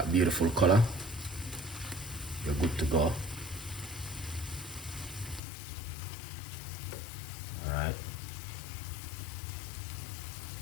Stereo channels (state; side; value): drops out; right; at 5.4 s